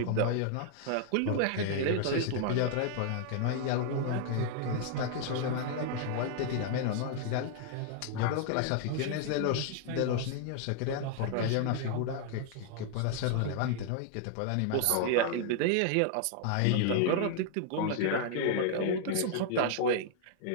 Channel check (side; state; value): both; different; correlation 0.00